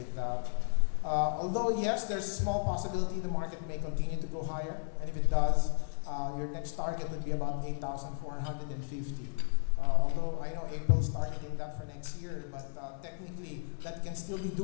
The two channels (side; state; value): right; silent; 55 dB below the other